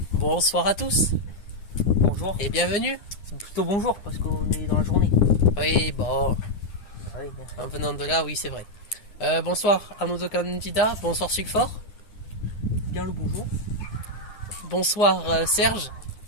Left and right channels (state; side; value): late; right; 9.8 ms